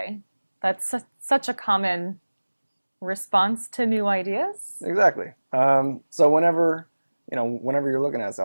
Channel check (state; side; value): inverted; both; correlation -1.00